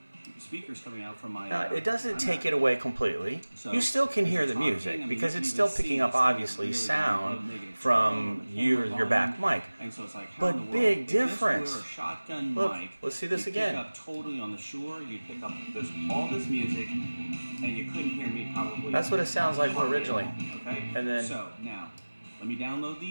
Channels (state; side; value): inverted; both; correlation -1.00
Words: Speakers coming out from my... Now, it doesn't take it away completely. You still can hear the music because it's still picking up, obviously, sound from your back mic. But big difference. Look, let's see this again. You pick up totally on the Shure, you pick up all this music, and you couldn't hear me probably... That's what it sounds like originally. Okay? And then... So, now, let me download